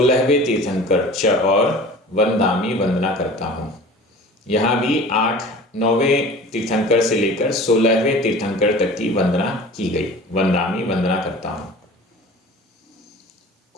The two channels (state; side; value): normal; both; correlation 0.41